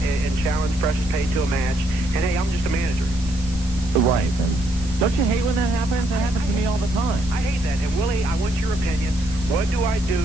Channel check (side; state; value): right; noise; hiss, 17 dB below the sound